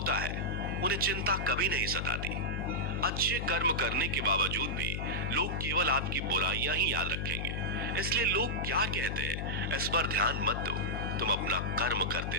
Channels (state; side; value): noise; left; hum, 2 dB below the sound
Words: है, उन्हें चिंता कभी नहीं सताती। अच्छे कर्म करने के बावजूद भी लोग केवल आपकी बुराइयां ही याद रखेंगे। इसलिए लोग क्या कहते हैं इस पर ध्यान मत दो, तुम अपना कर्म